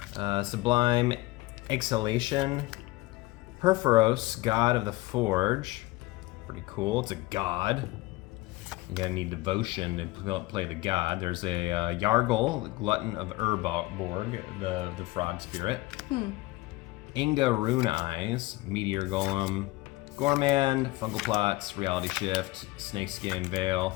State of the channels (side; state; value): right; quieter; 20.4 dB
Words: Sublime Exhalation. Perforos, God of the Forge. Pretty cool. It's a god. You're gonna need devotion to play the god. There's a Yargle, the Glutton of Urborg, the frog spirit. Inga Rune Eyes, Meteor Golem, Gormand, Fungal Plots, Reality Shift, Snakeskin Veil,